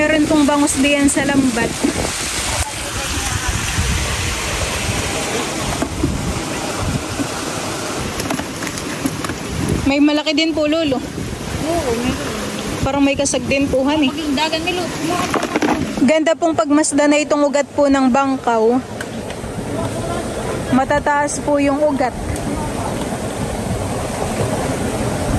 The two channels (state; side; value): identical; both; correlation 1.00